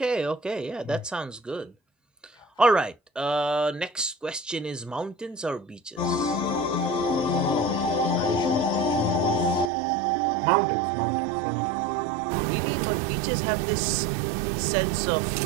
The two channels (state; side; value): drops out; left; at 9.7 s